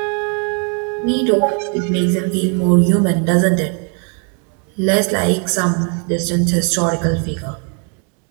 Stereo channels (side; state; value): left; quieter; 39.3 dB